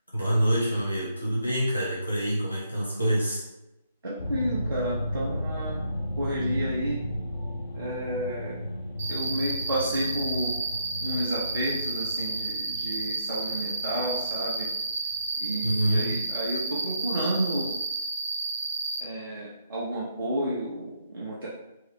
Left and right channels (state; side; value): inverted; both; correlation -0.75